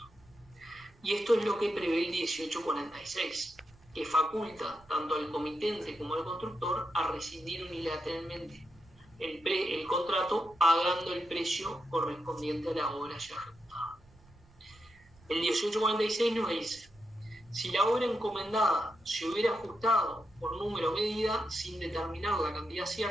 Y esto es lo que prevé el 1846, que faculta tanto al comitente como al constructor a rescindir unilateralmente el contrato pagando el precio correspondiente a la obra ya ejecutada. El 1846 nos dice: si la obra encomendada se hubiera ajustado por número o medida sin determinar la cantidad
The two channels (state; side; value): noise; right; rumble, 27 dB below the sound